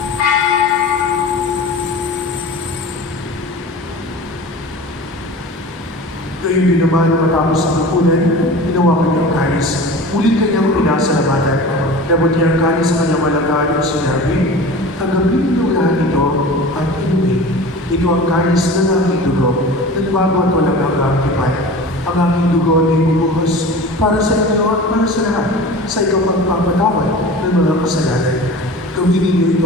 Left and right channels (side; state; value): both; normal; correlation 0.36